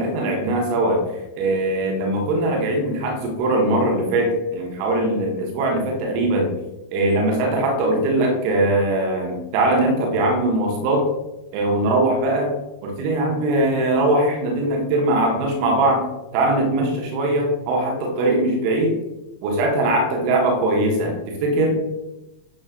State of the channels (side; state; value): left; late; 27 ms